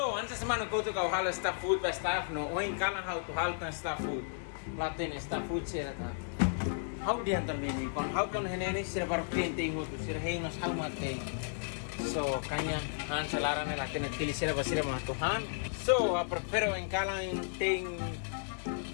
antes semana kau tu kau hal staff food ba staff no oin kalang how to hal tan staff food. Laten staff food sira ta. How di antar mini kon how kon hene sira baru painting ho tu sira hengas how mate. So kanya han salarane laten tili sira ba sira ma to han. So prefero en kalang ting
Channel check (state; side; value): silent; right; digital silence